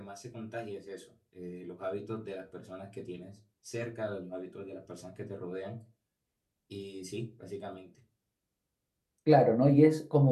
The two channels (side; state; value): both; identical; correlation 1.00